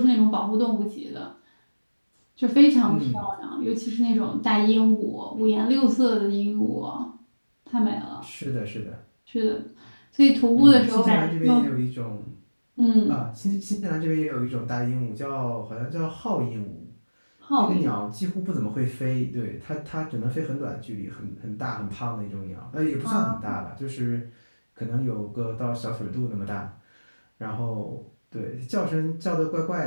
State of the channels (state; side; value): inverted; both; correlation -1.00